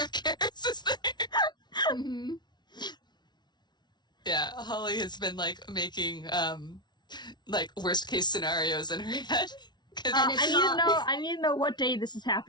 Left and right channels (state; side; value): late; right; 0.20 ms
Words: Keris is there. Mm-hmm. Yeah, Holly has been like making like worst case scenarios in her head. I need to know what day this is